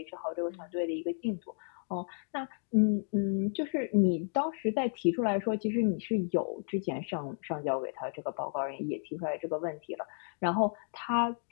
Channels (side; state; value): right; silent; digital silence